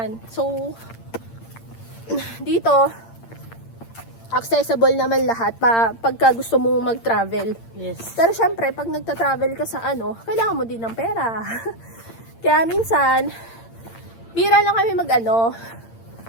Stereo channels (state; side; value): late; right; 8.8 ms